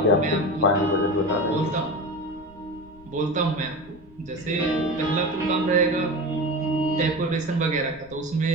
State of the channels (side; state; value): left; noise; rumble, 24 dB below the sound